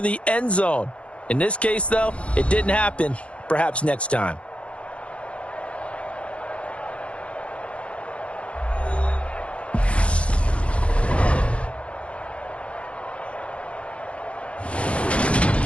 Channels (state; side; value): late; right; 0.061 ms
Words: the end zone. In this case, though, it didn't happen. Perhaps next time.